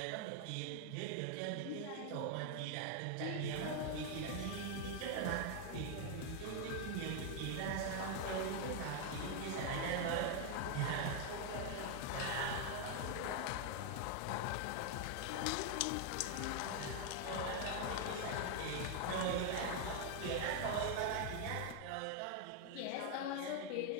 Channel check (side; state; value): both; different; correlation 0.00